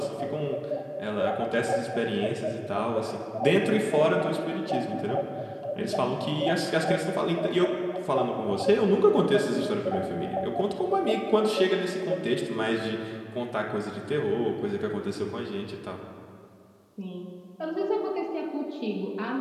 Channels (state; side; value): identical; both; correlation 1.00